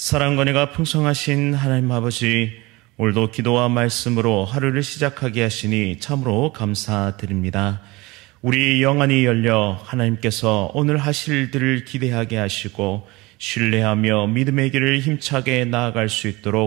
은혜가 풍성하신 하나님 아버지, 오늘도 기도와 말씀으로 하루를 시작하게 하시니 참으로 감사드립니다. 우리 영안이 열려 하나님께서 오늘 하실 일들을 기대하게 하시고 신뢰하며 믿음의 길을 힘차게 나아갈 수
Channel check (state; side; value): quieter; left; 22.6 dB